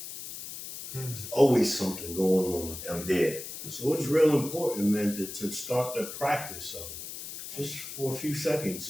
There's always something going on. I'm dead. So it's real important, man, to start the practice of it. Just for a few seconds.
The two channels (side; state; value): left; noise; hiss, 10 dB below the sound